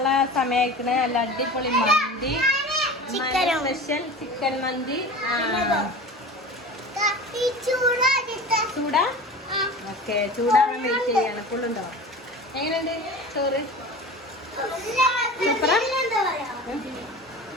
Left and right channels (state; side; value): normal; both; correlation 0.35